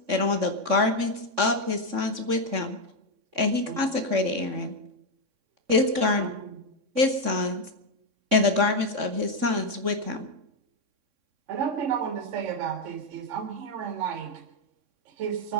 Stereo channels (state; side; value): late; left; 3.6 ms